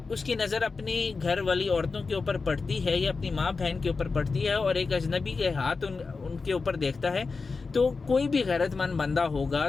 उसकी नज़र अपनी घर वाली औरतों के ऊपर पड़ती है या अपनी माँ बहन के ऊपर पड़ती है और एक अजनबी के हाथ उनके ऊपर देखता है, तो कोई भी गैरतमंद बंदा होगा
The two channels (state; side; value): quieter; right; 4.4 dB